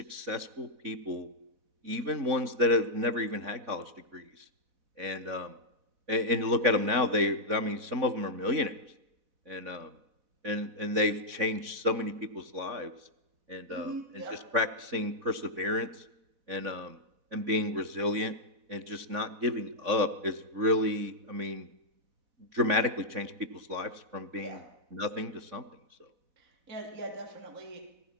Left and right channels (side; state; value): left; late; 4.1 ms